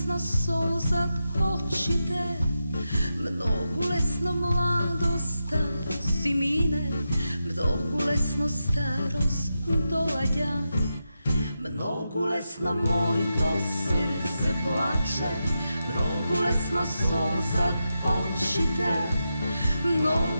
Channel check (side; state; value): both; inverted; correlation -0.88